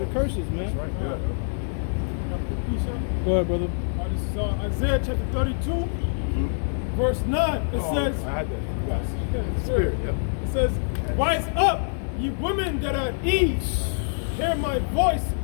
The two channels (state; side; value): silent; right; digital silence